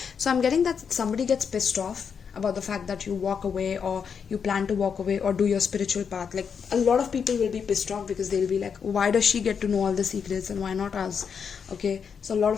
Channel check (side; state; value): right; quieter; 6.6 dB